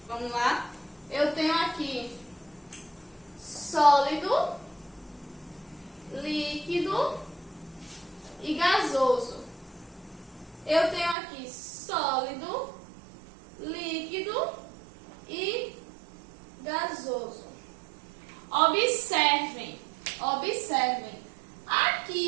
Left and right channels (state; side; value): drops out; left; at 11.2 s